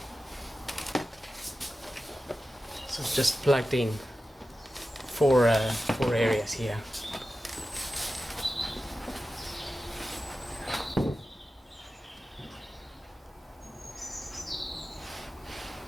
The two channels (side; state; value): both; normal; correlation 0.93